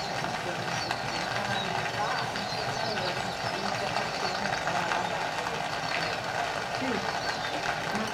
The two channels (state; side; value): identical; both; correlation 1.00